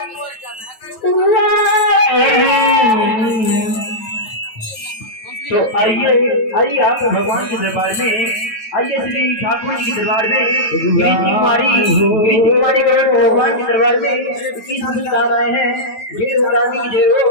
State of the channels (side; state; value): right; late; 9.2 ms